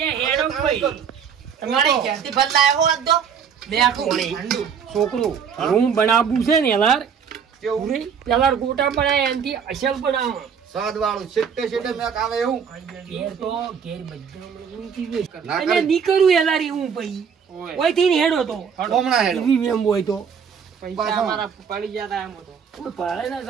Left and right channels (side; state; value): left; quieter; 7.0 dB